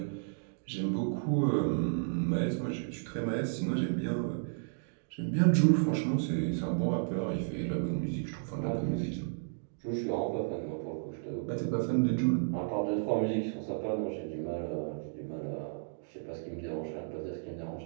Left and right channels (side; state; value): left; silent; digital silence